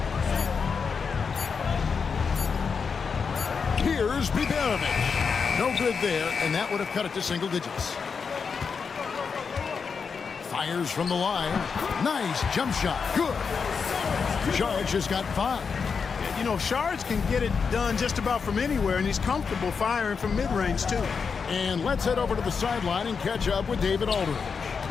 Here's Biberovic. No good there, and that would have cut it to single digits. Fires from the line. Nice jump shot. Good. Charge has got 5. You know, Shards can get it done just about from anywhere, and he's comfortable firing from mid-range, too. And let's head over to the sideline and catch up with David Aldridge.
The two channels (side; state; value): right; quieter; 5.7 dB